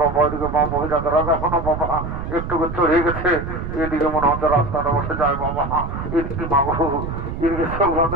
বাবা এদিকে মা মহিলাদের এখনো বাবা একটু চড়ে গেছে, এদিকে মনে হচ্ছে রাস্তাটা বসে যায় বাবা। এদিকে মাগো এদিকে সব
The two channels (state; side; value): noise; right; rumble, 6 dB below the sound